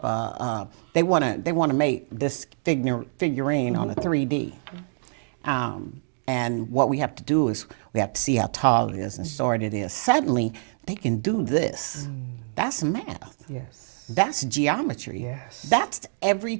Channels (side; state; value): left; silent; digital silence